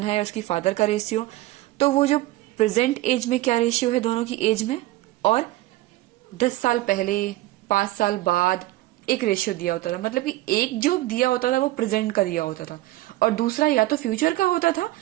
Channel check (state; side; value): quieter; left; 17.5 dB